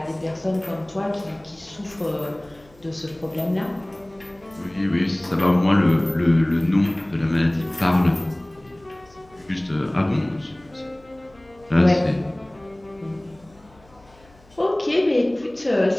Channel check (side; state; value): left; noise; hum, 28 dB below the sound